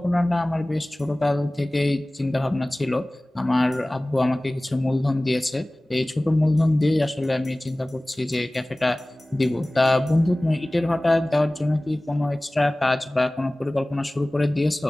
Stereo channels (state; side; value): normal; both; correlation 0.98